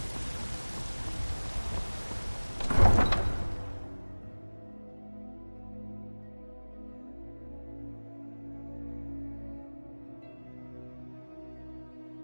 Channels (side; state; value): both; inverted; correlation -1.00